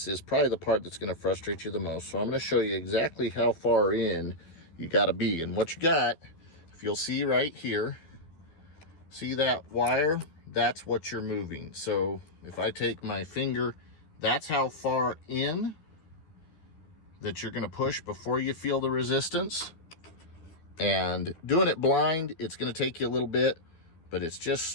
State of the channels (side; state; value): right; late; 13 ms